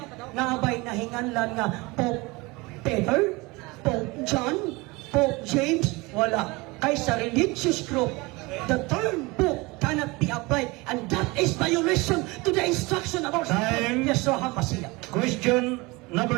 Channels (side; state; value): left; quieter; 24.1 dB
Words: Naabay na hinganlan nga Pope Peter, Pope John, Pope James, wala. Kay sa religious group, the term book cannot be applied, and that is violation to the instruction of our Time. Yeshua HaMashiach. Question number